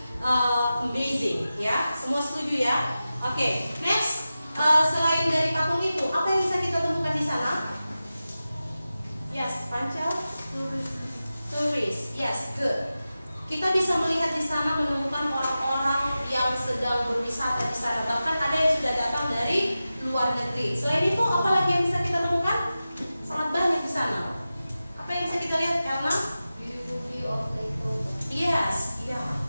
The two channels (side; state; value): both; inverted; correlation -0.94